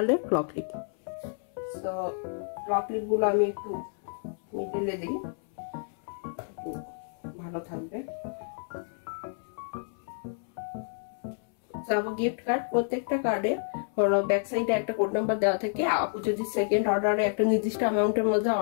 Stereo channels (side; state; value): right; silent; 58 dB below the other